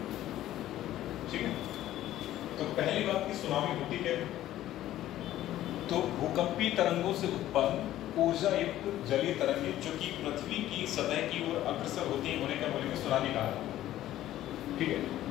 ठीक है, तो पहली बात की सुनामी होती है तो भूकंपीय तरंगों से उत्पन्न ऊर्जा युक्त जलीय तरंगे जो कि पृथ्वी की सतह की ओर अग्रसर होती है, उन्हें क्या बोलेंगे, सुनामी कहा। ठीक है,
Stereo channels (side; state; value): right; quieter; 13.7 dB